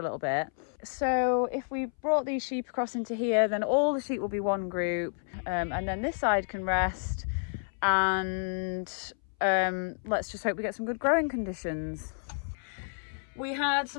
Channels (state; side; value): silent; right; 58 dB below the other